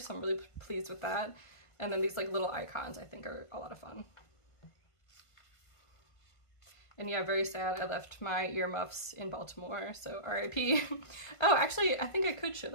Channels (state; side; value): late; right; 1.5 ms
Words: I'm really pleased with that. And then these like little icons I think are a lot of fun. And yeah, very sad I left my earmuffs in Baltimore, so RIP. Oh, actually, I think I could show